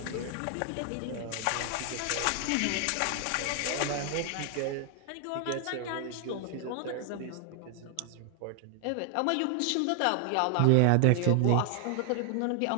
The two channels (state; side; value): different; both; correlation 0.00